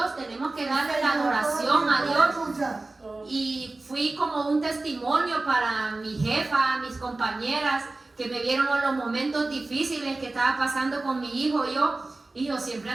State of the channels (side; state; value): left; quieter; 3.2 dB